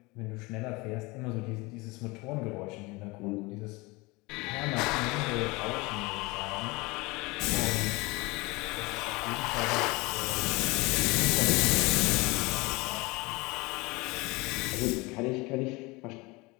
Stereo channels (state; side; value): quieter; right; 24.4 dB